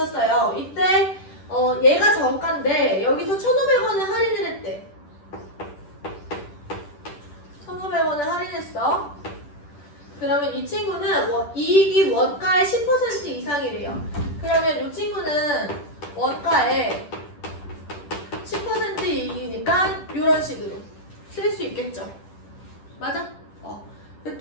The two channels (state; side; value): late; right; 10 ms